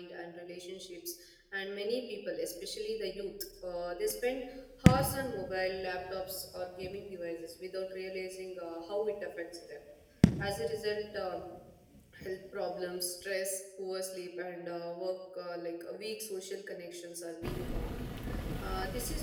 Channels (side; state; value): both; identical; correlation 1.00